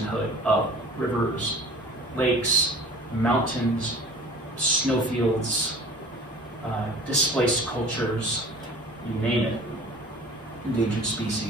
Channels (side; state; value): both; normal; correlation 0.44